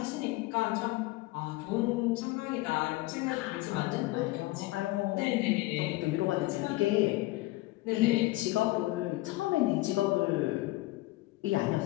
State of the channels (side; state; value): right; quieter; 19.3 dB